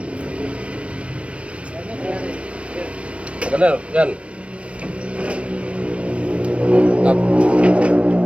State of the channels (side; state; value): left; late; 0.062 ms